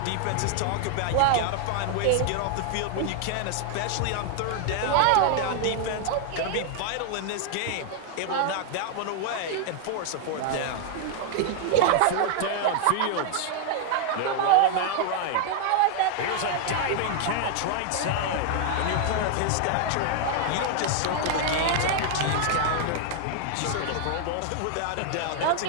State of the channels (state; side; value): different; both; correlation 0.00